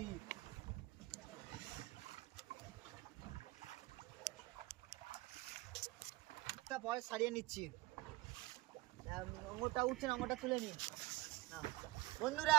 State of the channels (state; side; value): quieter; left; 19.7 dB